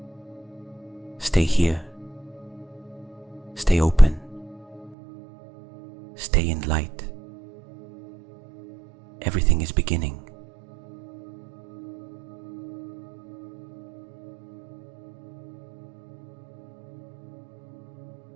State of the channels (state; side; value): drops out; left; at 5.0 s